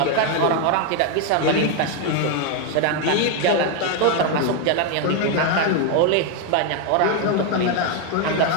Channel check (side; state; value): both; different; correlation 0.01